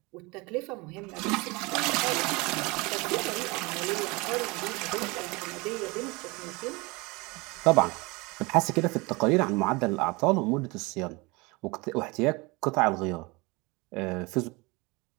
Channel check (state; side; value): quieter; left; 25.6 dB